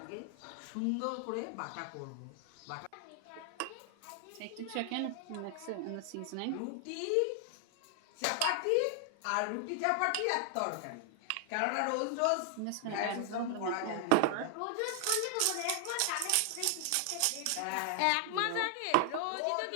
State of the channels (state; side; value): different; both; correlation 0.00